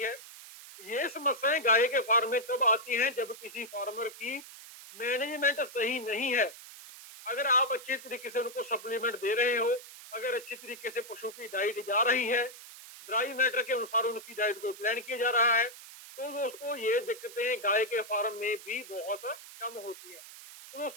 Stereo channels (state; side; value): noise; right; hiss, 16 dB below the sound